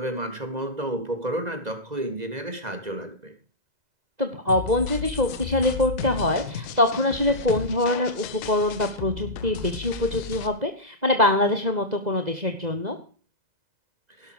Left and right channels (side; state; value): left; late; 2.0 ms